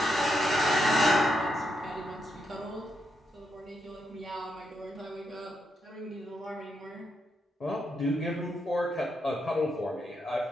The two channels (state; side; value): normal; both; correlation 0.82